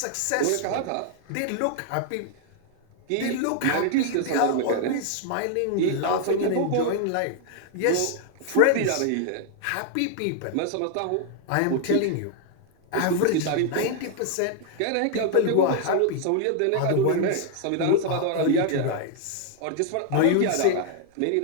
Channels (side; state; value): both; different; correlation 0.00